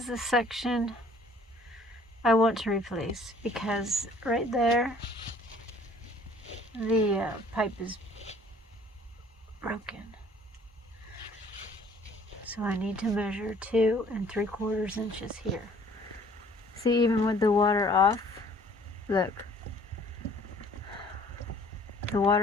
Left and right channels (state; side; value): normal; both; correlation 0.55